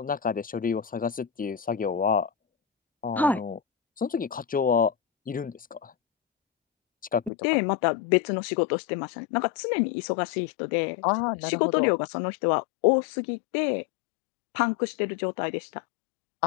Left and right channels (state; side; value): drops out; right; at 7.3 s